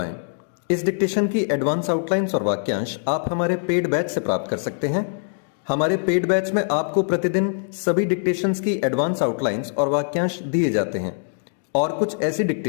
इस डिक्टेशन की एडवांस आउटलाइंस और वाक्यांश आप हमारे पेड बैच से प्राप्त कर सकते हैं। हमारे पेड बैच में आपको प्रतिदिन सभी डिक्टेशंस की एडवांस आउटलाइंस और वाक्यांश दिए जाते हैं और कुछ ऐसी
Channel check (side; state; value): right; silent; digital silence